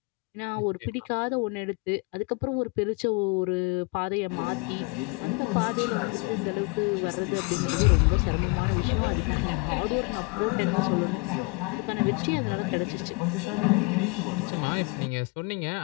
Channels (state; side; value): quieter; right; 28.9 dB